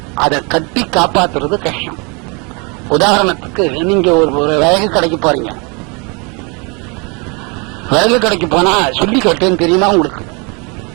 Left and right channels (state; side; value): quieter; left; 32.0 dB